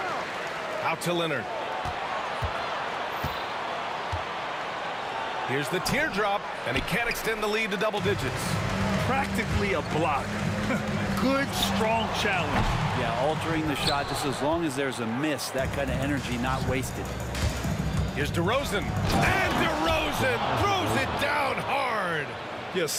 Out to Leonard. Here's the teardrop, and he can't extend the lead to double digits. Practically a block. Good, strong challenge. Yeah, altering the shot just as long as there's a miss, that kind of energy not wasted. Here's DeRozan. And DeRozan throws it down hard. Yeah,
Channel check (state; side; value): identical; both; correlation 1.00